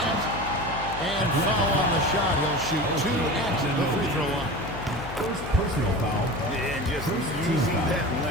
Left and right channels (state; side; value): noise; left; hum, 10 dB below the sound